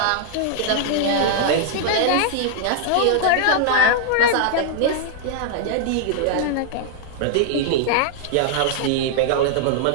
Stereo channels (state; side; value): different; both; correlation -0.01